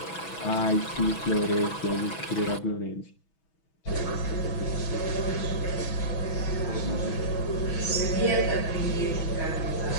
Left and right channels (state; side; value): late; right; 6.1 ms